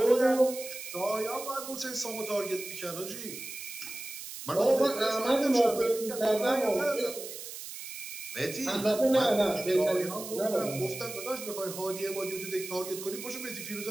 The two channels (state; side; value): noise; right; hiss, 10 dB below the sound